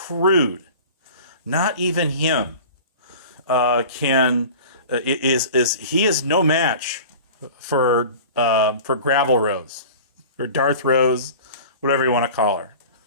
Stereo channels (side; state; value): both; inverted; correlation -0.39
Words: not even him, he is no match for Gravel Rose or Darth Rose, whatever you want to call her.